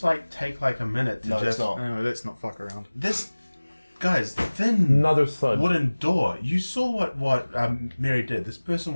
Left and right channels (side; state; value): both; inverted; correlation -1.00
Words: like take like a minute to No, just. it's not. No, let's not fuck around. This, guys, thin Another thud. wooden door. You saw what Mary did. This person